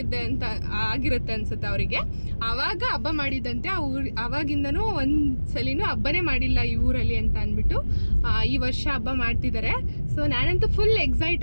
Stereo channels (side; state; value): both; inverted; correlation -1.00